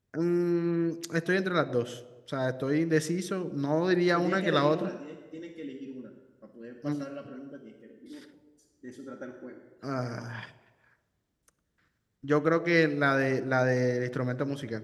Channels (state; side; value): identical; both; correlation 1.00